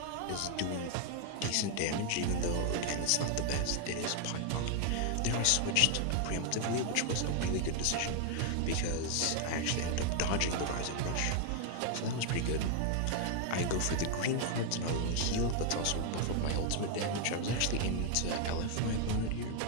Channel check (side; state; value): both; different; correlation 0.00